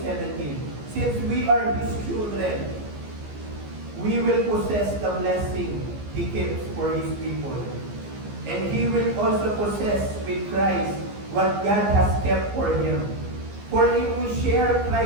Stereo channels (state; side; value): late; left; 15 ms